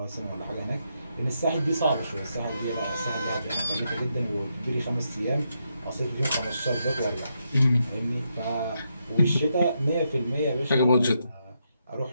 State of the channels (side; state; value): both; inverted; correlation -0.81